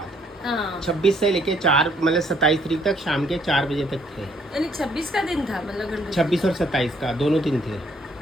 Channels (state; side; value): normal; both; correlation 0.66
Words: 26 से लेके 4 मतलब 27 तारीख तक शाम के 4 बजे तक थे, यानी 26 का दिन था, मतलब 26 और 27 का दोनों दिन थे।